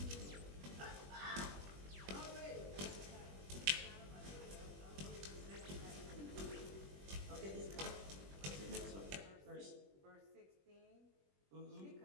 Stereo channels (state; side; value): late; left; 21 ms